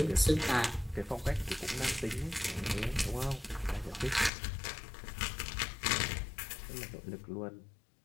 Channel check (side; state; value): right; drops out; at 4.3 s